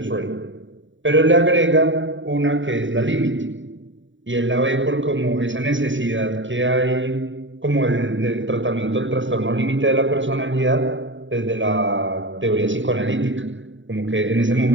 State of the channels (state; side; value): late; left; 0.55 ms